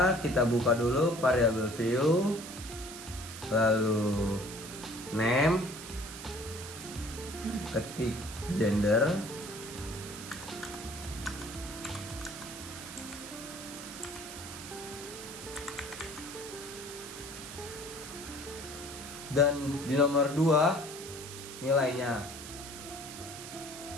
kita buka dulu variabel view, lalu name, ketik gender, dan di nomor 2 nilainya.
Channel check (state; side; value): noise; right; hiss, 11 dB below the sound